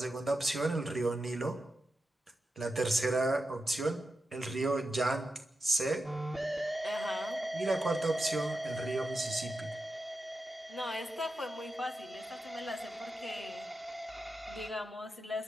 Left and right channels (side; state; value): both; normal; correlation 0.90